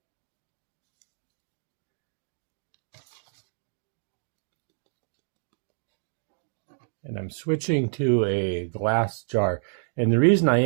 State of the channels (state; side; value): silent; left; digital silence